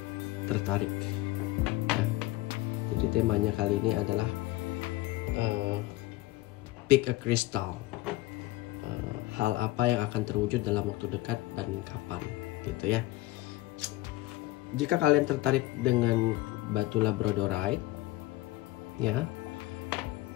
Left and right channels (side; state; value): right; quieter; 18.5 dB